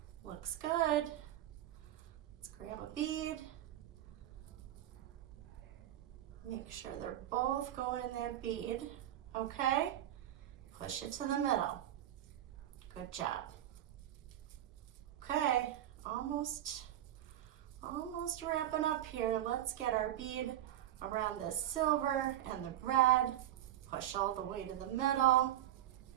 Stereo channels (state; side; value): quieter; left; 12.6 dB